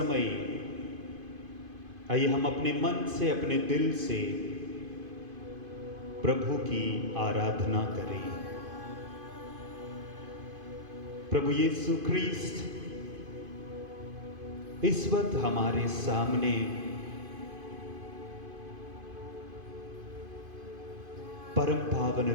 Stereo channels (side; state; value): left; late; 2.5 ms